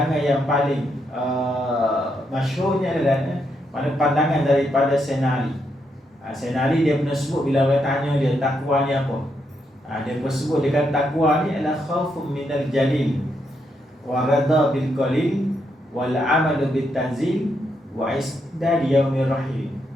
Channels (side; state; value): both; normal; correlation 0.79